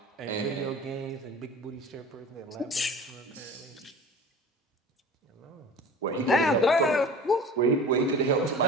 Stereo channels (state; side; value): normal; both; correlation 0.39